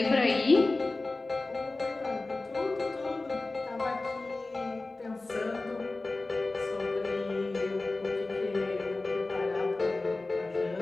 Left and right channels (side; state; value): right; quieter; 3.2 dB